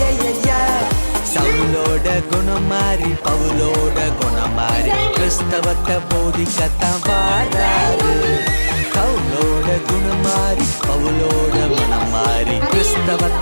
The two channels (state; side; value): inverted; both; correlation -1.00